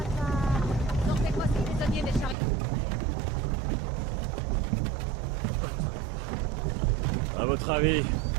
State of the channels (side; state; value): left; drops out; at 2.4 s